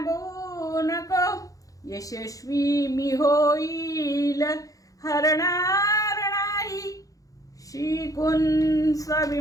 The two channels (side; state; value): right; late; 0.17 ms